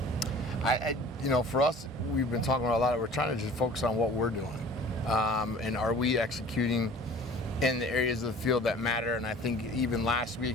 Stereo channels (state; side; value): normal; both; correlation 0.46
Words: For us, we've been talking about a lot. We're trying to just focus on what we're doing, and are we executing in the areas of the field that matter? And I think even last